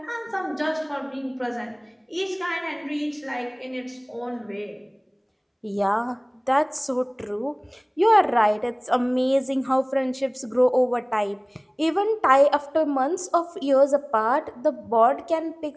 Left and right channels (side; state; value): both; identical; correlation 1.00